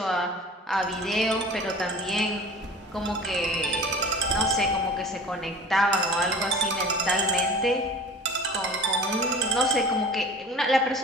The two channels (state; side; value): normal; both; correlation 0.41